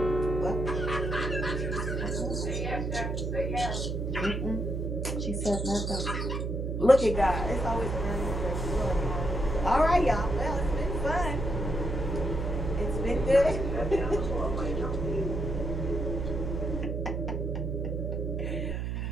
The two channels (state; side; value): noise; right; hum, 2 dB below the sound